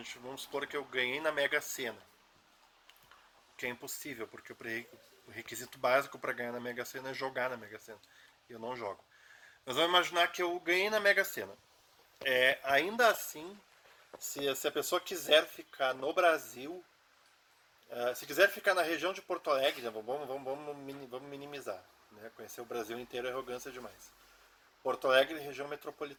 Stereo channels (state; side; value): identical; both; correlation 1.00